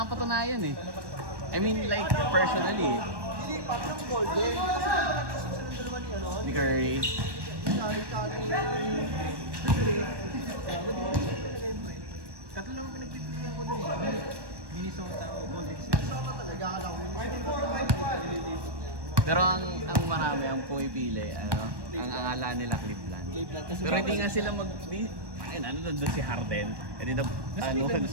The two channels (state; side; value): late; left; 1.2 ms